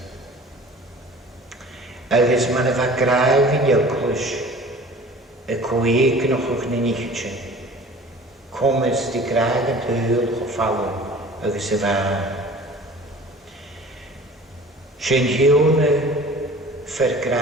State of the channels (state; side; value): normal; both; correlation 0.45